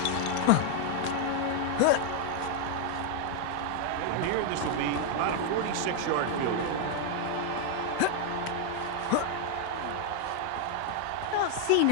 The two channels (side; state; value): both; different; correlation 0.00